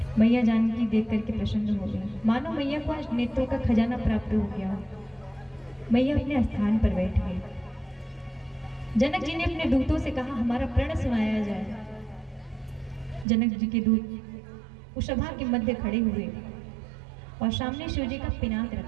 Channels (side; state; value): left; drops out; at 13.2 s